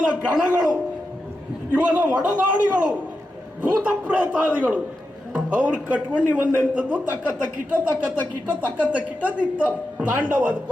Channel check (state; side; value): normal; both; correlation 0.88